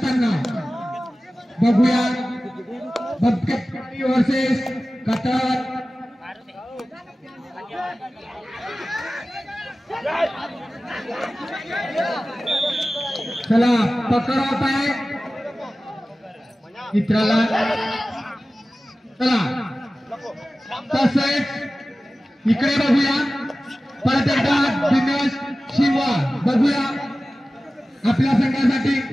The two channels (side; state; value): both; normal; correlation 0.96